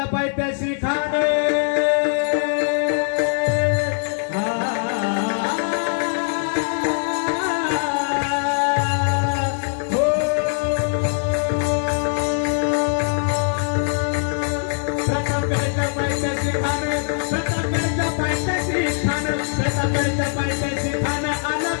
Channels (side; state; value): right; silent; 65 dB below the other